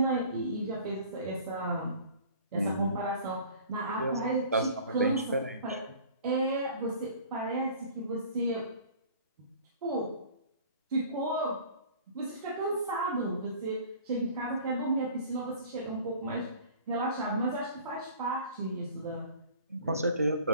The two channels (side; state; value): both; inverted; correlation -0.46